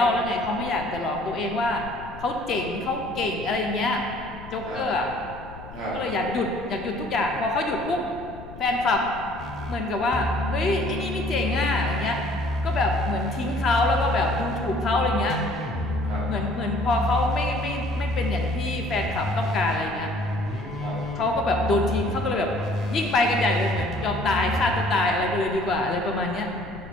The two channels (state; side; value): noise; left; rumble, 15 dB below the sound